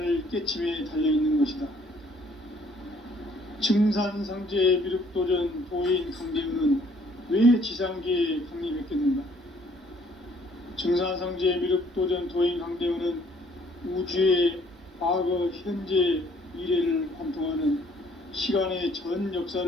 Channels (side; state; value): both; normal; correlation 0.62